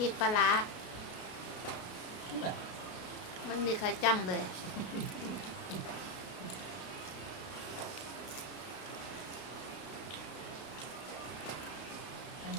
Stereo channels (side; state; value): right; late; 33 ms